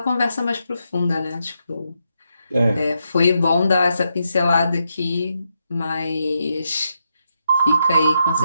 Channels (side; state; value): both; inverted; correlation -0.83